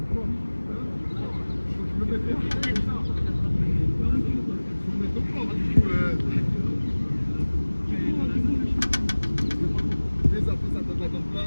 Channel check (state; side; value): inverted; both; correlation -1.00